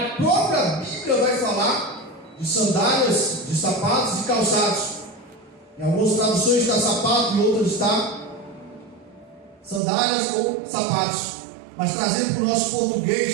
própria Bíblia vai falar de sandálias, de sapatos e calçados. Em algumas traduções está sapato, em outras está sandálias ou sapatos. Mas trazendo para o nosso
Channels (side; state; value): left; drops out; at 9.8 s